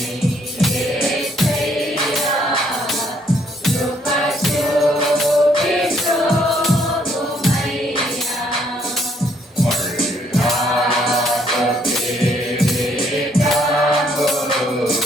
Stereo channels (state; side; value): normal; both; correlation 0.68